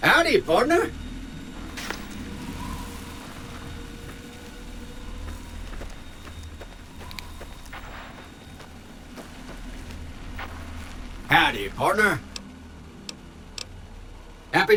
Howdy, partner. Howdy, partner. Happy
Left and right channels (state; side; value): identical; both; correlation 1.00